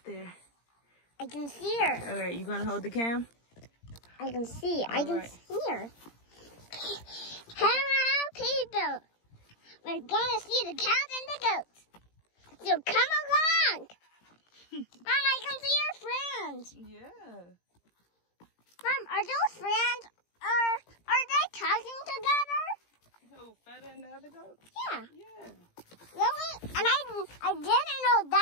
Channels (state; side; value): late; right; 17 ms